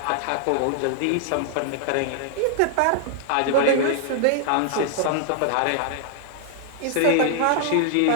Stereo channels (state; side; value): different; both; correlation -0.01